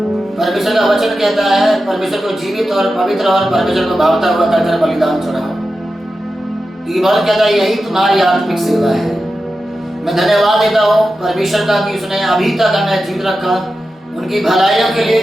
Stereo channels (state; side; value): normal; both; correlation 0.92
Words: परमेश्वर का वचन कहता है परमेश्वर को जीवित और पवित्र और परमेश्वर को भावता हुआ कर बलिदान चढ़ाओ, क्योंकि बहुत कहता है यही तुम्हारी आत्मिक सेवा है। मैं धन्यवाद देता हूँ परमेश्वर का कि उसने अभी तक हमें जीवित रखा, उनकी भलाइयों के लिए,